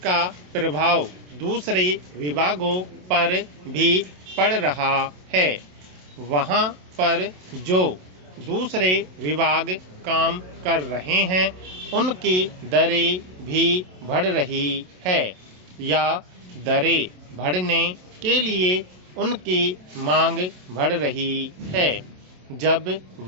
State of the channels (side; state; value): left; late; 27 ms